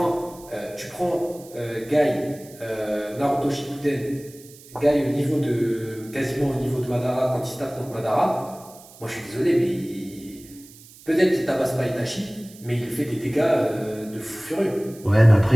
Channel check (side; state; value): right; noise; hiss, 21 dB below the sound